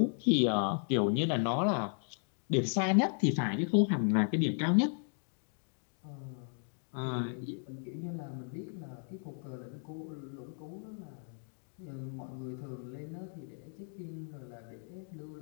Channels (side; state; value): right; silent; 54 dB below the other